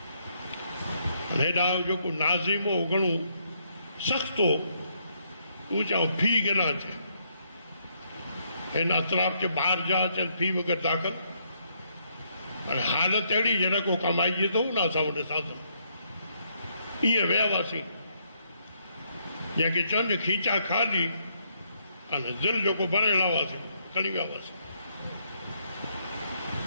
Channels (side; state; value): both; inverted; correlation -0.73